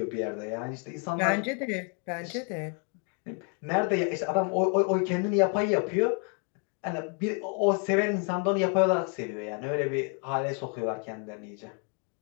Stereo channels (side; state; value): right; quieter; 39.6 dB